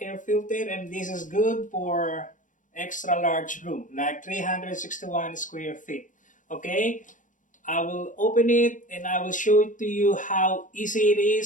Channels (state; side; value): late; right; 0.37 ms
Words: filter, and this is good for extra large room, like 361 square feet. Okay, I will open it and I will show it to you how easy it